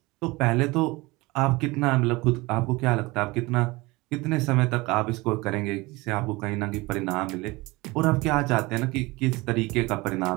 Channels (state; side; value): quieter; left; 22.6 dB